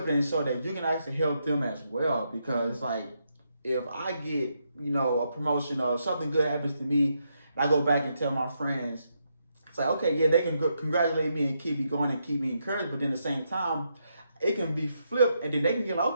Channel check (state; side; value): inverted; both; correlation -0.80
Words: it and show that you can actually help them as well. Because it's like, if I get, a promotion or something good happens to me, and I go back and tell my friends, it's like, okay, yeah, they can congratulate me and keep me going and keep me encouraged. But then at the same time, it can be flipped, and then they can get like,